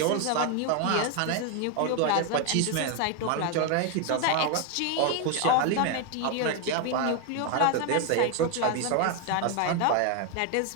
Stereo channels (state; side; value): different; both; correlation 0.01